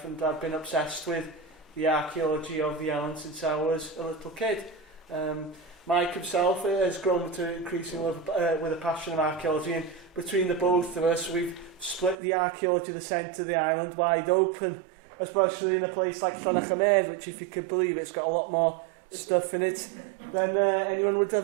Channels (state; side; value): drops out; left; at 12.2 s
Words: and I've been obsessed with the archaeology of the island since I was a little kid. Mike himself has grown to increasing love with a passion of archaeology, and between the both of us, we've split the archaeology of the centre of the island wide open, especially in a place like Llanerchymedd, which, if you could believe it, it's got a lot more stuff in it than anyone would